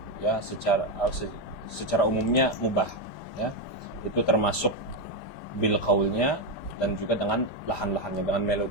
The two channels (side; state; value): right; late; 5.0 ms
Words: ya secara umumnya mubah, ya. Itu termasuk bil qaulnya dan juga dengan lahan-lahannya, dengan